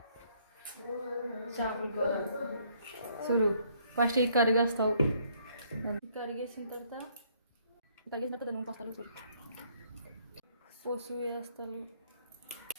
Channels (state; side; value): inverted; both; correlation -0.66